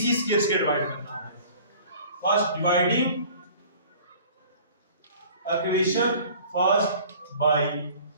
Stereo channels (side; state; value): both; inverted; correlation -0.48